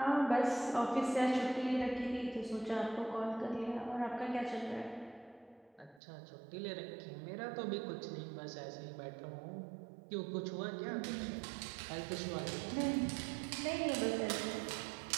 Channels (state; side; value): drops out; left; at 6.0 s